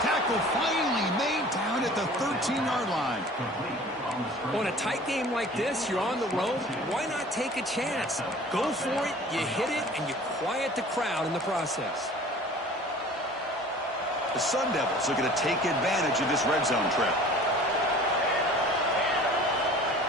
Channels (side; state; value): both; normal; correlation 0.46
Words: Tackle finally made down at the 13-yard line. On a tight game like this, you're on the road. Why not take a chance? Go for it, you hit it, and you quiet the crowd in the process. The Sun Devils are going to take advantage of this red zone trip.